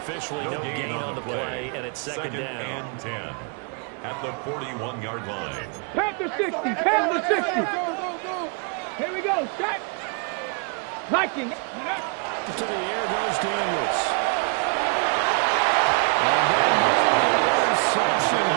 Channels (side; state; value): left; quieter; 37.3 dB